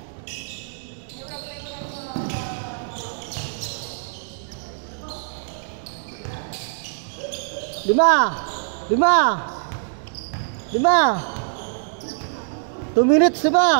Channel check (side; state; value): left; silent; digital silence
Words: Lima. Lima. Lima. 2 minutes na ba?